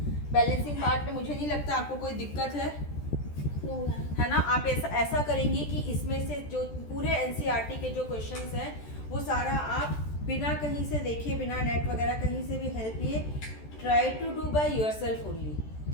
बैलेंसिंग पार्ट में मुझे नहीं लगता आपको कोई दिक्कत है, No, ma'am. है ना। आप ऐसा करेंगे कि इसमें से जो पूरे एनसीईआरटी के जो क्वेश्चंस हैं वो सारा आप बिना कहीं से देखे, बिना नेट वगैरह कहीं से भी हेल्प लिए try to do by yourself only,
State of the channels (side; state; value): right; late; 14 ms